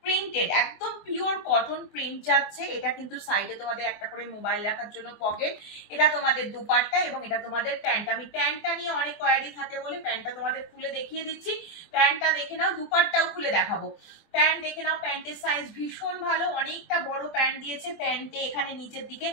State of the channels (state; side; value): late; right; 24 ms